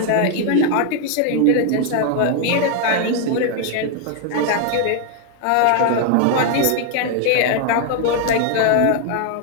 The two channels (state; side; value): different; both; correlation 0.00